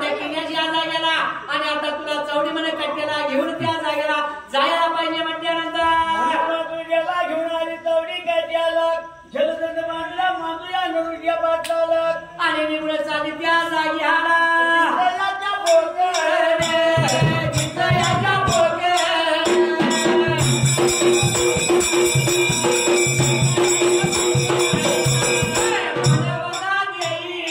केल्याची या जागेला आणि आता तुला चौडी म्हणे कट्ट्याला घेऊन त्या जागेला जायला पाहिजे म्हटल्यानंतर तुझ्याला घेऊन आली चौडी कट्ट्याला जलदंड मांडला मांडूया नरुट्या पाटलाला आणि निघून चालली त्या जागेला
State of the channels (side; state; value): both; identical; correlation 1.00